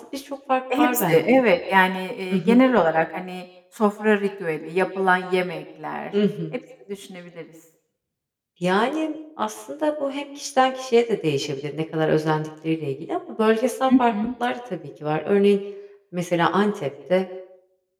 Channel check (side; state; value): both; identical; correlation 1.00